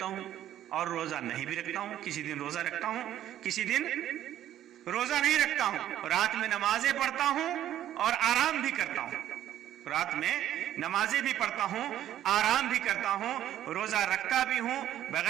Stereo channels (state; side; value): quieter; left; 11.9 dB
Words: ہوں اور روزہ نہیں بھی رکھتا ہوں، کسی دن روزہ رکھتا ہوں، کسی دن روزہ نہیں رکھتا ہوں، رات میں نمازیں پڑھتا ہوں اور آرام بھی کرتا ہوں، رات میں نمازیں بھی پڑھتا ہوں، آرام بھی کرتا ہوں، روزہ رکھتا بھی ہوں،